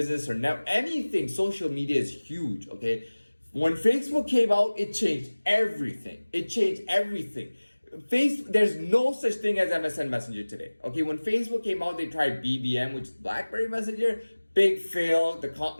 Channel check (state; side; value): inverted; both; correlation -1.00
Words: or anything. Social media is huge, okay? When Facebook came out, it changed everything. There's no such thing as MSN Messenger today. Okay, when Facebook came out, they tried BBM, which is BlackBerry Messenger. Big fail.